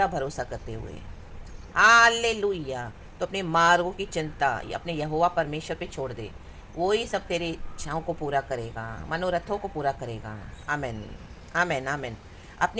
भरोसा करते हुए। हालेलुया। तो अपने मार्गों की चिंता या अपने यहोवा परमेश्वर पे छोड़ दे, वो ही सब तेरे इच्छाओं को पूरा करेगा, मनोरथों को पूरा करेगा। आमेन आमेन आमेन।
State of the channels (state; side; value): identical; both; correlation 1.00